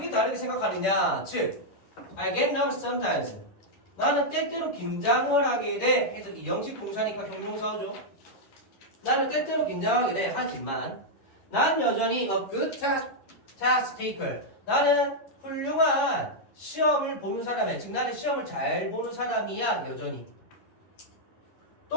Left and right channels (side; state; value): right; late; 11 ms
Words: 다르게 생각하느냐? 즉, I get nervous sometimes. 나는 때때로 긴장을 하게 돼. 해서 이 영식 동사니까 형용사죠. 나는 때때로 긴장하게 돼. 하지만 난 여전히 a good test taker. 나는 훌륭한 시험을 보는 사람이야. 즉 나는 시험을 잘 보는 사람이야. 여전히.